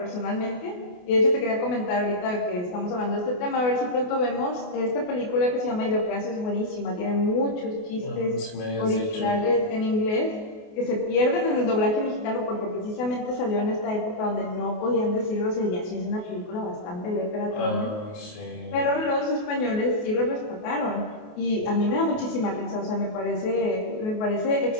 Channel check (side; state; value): right; late; 28 ms